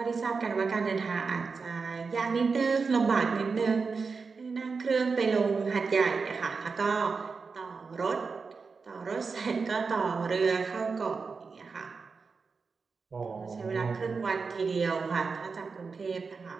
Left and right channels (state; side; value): quieter; left; 4.8 dB